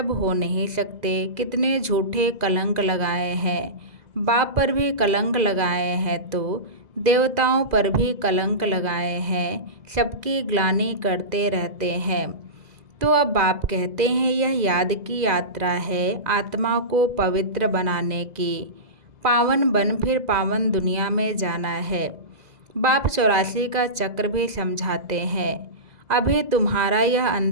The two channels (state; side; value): late; left; 2.0 ms